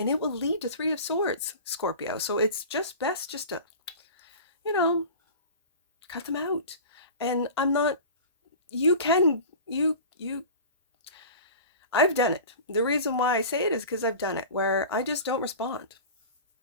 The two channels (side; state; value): both; inverted; correlation -0.36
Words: it will lead to Three of Swords, Scorpio. So it's just best just to, cut them out. And I'm not, I've done it. The reason why I say it is because I've done it, where I just don't respond.